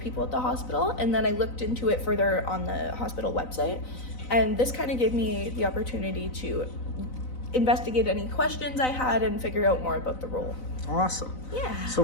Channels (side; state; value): right; late; 4.0 ms